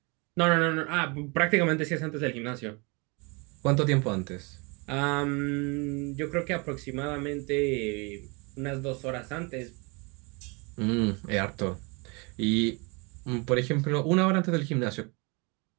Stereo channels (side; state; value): left; quieter; 29.8 dB